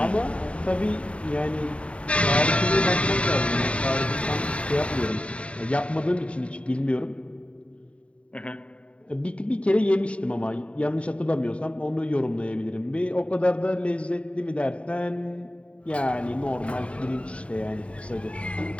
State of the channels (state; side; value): late; right; 0.062 ms